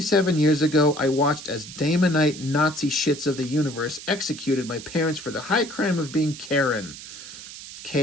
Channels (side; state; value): right; noise; hiss, 14 dB below the sound